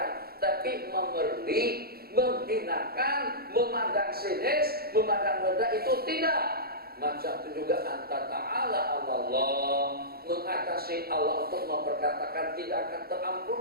Tapi memerli, menghinakan, memandang sinis, memandang rendah itu tidak. Macam itu juga anta ta'ala Allah, mengatasi Allah untuk memperkatakan tidak akan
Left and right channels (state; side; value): late; left; 0.45 ms